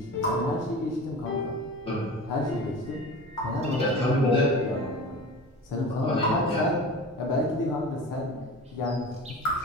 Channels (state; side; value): normal; both; correlation 0.34